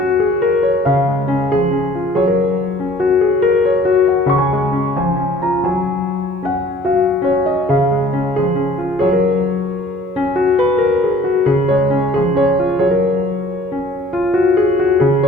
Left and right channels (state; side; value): normal; both; correlation 0.52